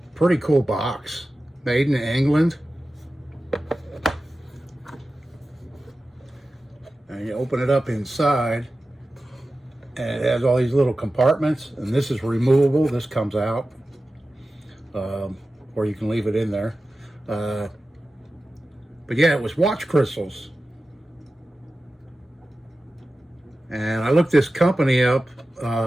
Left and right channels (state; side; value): normal; both; correlation 0.94